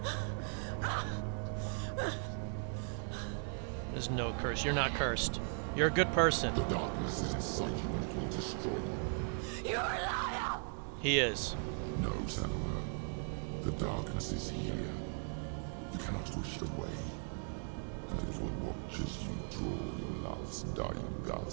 It was the only way to fight the curse within you. There's no curse. You're not cursed. You're a good person. The darkness is inside you and it will destroy you. You're a liar! He is. No, Senua. The darkness is here. You cannot wish it away. And it will watch as you draw your last dying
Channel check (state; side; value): silent; left; 52 dB below the other